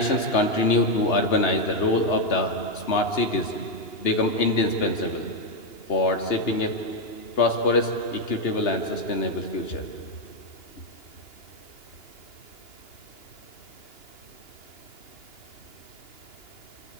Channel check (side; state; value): right; late; 2.9 ms